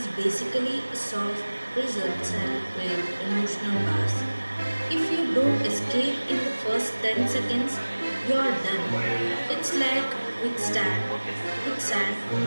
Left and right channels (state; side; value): inverted; both; correlation -1.00